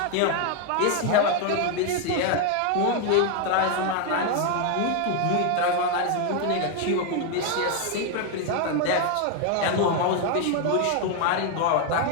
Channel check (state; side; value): different; both; correlation 0.01